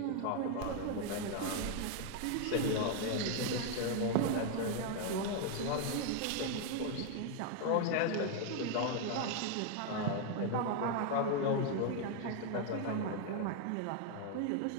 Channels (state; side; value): different; both; correlation 0.01